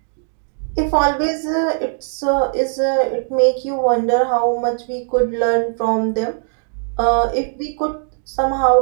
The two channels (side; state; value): left; silent; digital silence